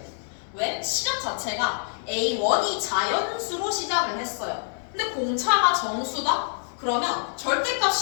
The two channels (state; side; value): silent; right; digital silence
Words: 왜? 시작 자체가 A1이 자연수로 시작을 했어요. 근데 공차가 정수다? 그러면 절대값